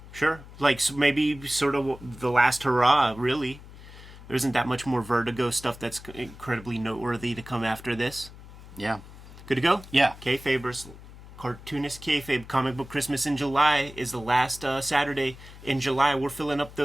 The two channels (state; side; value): noise; left; hum, 17 dB below the sound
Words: Like maybe sort of the last hurrah, really. There isn't that much more Vertigo stuff that's incredibly noteworthy to come after this. Yeah. Good to go? Yeah. Kayfabers. Cartoonist Kayfabe Comic Book Christmas in July is the last Saturday in July. We're filling up